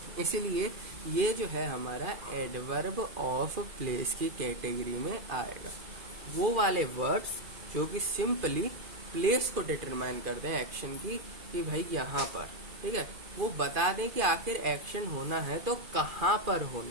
इसीलिए ये जो है हमारा एडवर्ब ऑफ प्लेस की कैटेगरी में आएगा। वो वाले वर्ड्स जो कि सिंपली प्लेस को डिटरमाइन कर दें एक्शन की, कि भाई यहाँ पर, ठीक है, वो बता दें कि आखिर एक्शन होना है तो कहाँ पर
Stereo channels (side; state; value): left; late; 2.4 ms